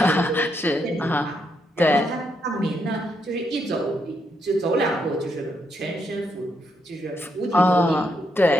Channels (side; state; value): both; normal; correlation 0.78